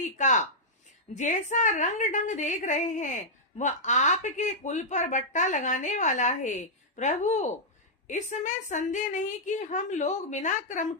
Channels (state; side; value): normal; both; correlation -0.08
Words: का जैसा रंग ढंग देख रहे हैं वह आपके कुल पर बट्टा लगाने वाला है। प्रभु, इसमें संदेह नहीं कि हम लोग बिना क्रम